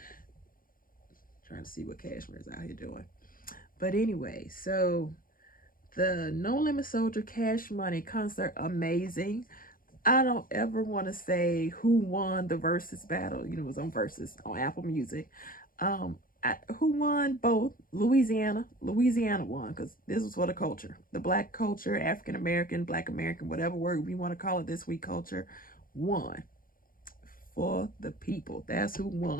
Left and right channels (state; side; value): late; right; 0.41 ms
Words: Trying to see what Cashmere is out here doing. But anyway, so the No Limit Soldier Cash Money concert, amazing. I don't ever want to say who won the versus battle. You know, it was on Versus on Apple Music. Who won both? Louisiana. Louisiana won because this was for the culture. The black culture, African American, black American, whatever word we want to call it this week, culture won for the people. That's who